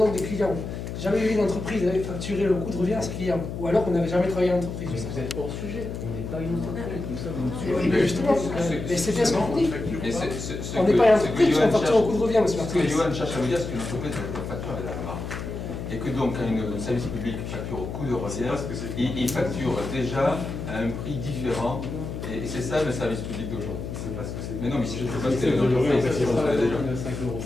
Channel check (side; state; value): left; noise; hum, 6 dB below the sound